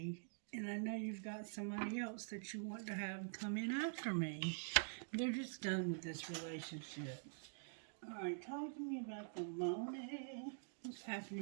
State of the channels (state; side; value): silent; left; digital silence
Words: and I know you've got somebody else that you want to have come in after me. They're just done with this relationship. Alright, talk to me about the money. What's